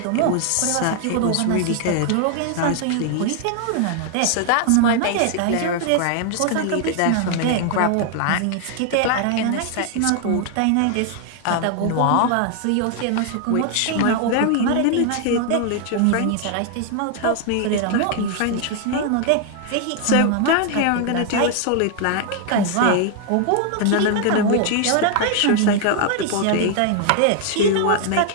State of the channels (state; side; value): different; both; correlation 0.00